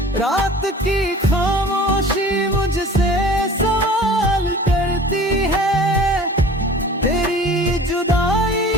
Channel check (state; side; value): normal; both; correlation 0.44